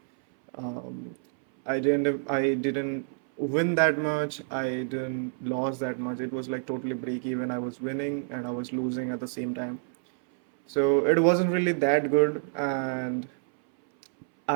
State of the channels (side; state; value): left; silent; 59 dB below the other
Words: Um, I didn't win that much. I didn't lose that much. It was like totally break-even. I was winning and I was losing at the same time. So it wasn't really that good, and